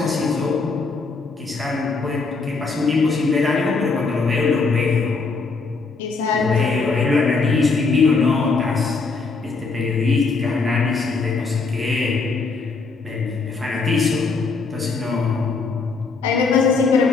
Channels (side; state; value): right; quieter; 4.3 dB